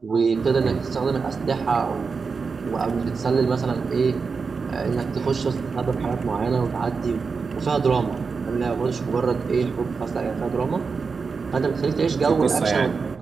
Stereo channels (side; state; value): left; quieter; 5.0 dB